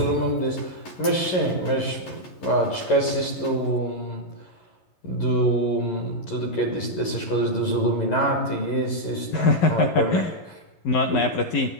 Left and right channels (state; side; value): late; right; 11 ms